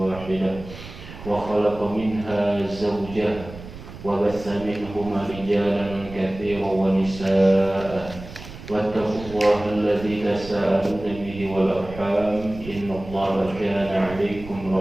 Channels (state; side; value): noise; right; rumble, 14 dB below the sound